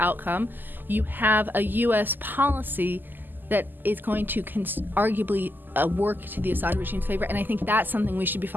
you have a U.S. policy that is going to arguably work to the Assad regime's favor. And I think that's something we should be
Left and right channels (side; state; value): left; late; 0.090 ms